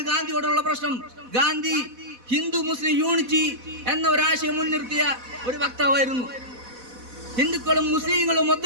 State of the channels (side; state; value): left; late; 4.1 ms